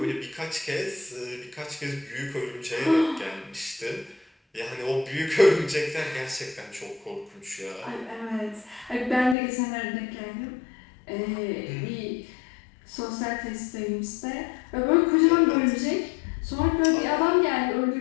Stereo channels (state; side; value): drops out; right; at 9.3 s